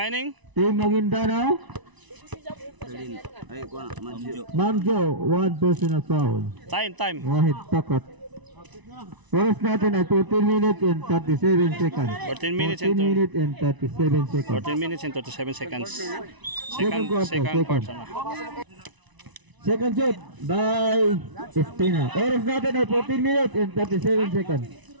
Team Maguindanao. Mamjo, 1 personal foul. Time. Wahid Takot. Oras natin ay 14 minutes and 37 seconds. 14 minutes 14 minutes and 37 seconds. 14 minutes and 37 seconds. Second quarter, second. quarter. Second shot by Espina. Oras natin ay 14 minutes and 37 seconds.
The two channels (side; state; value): left; late; 1.0 ms